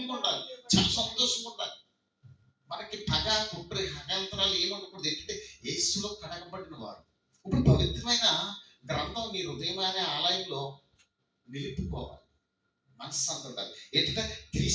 ఉండాలి, చాలా సంతోషంగా ఉండాలి. మనకి పగ కుట్ర హకాంతరాలు ఏమనుకూడదు. ఏంటంటే యేసులో కడగబడిన వారు. ఇప్పుడు పవిత్రమైన గ్రంథం నీ హృదయం అనే ఆలయంలో నిలుపుకోవాలి. మనశ్శాంతి ఉండాలి. ఏంటంటే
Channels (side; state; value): both; identical; correlation 1.00